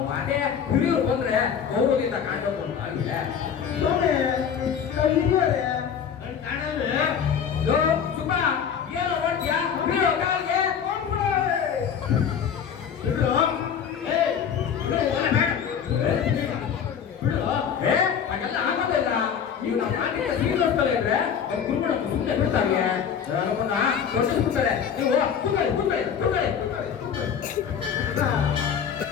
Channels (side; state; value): right; quieter; 7.7 dB